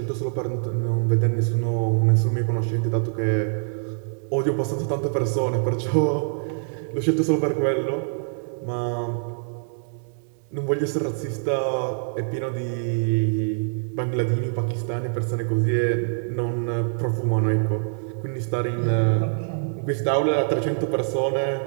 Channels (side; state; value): left; silent; 62 dB below the other